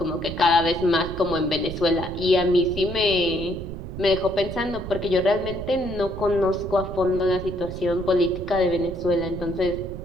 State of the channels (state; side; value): noise; right; rumble, 9 dB below the sound